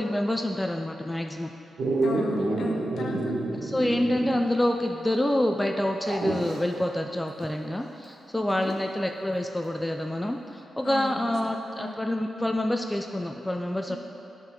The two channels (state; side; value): normal; both; correlation 0.93